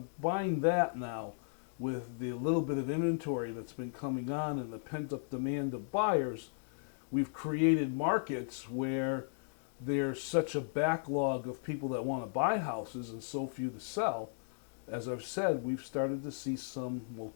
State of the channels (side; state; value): right; silent; digital silence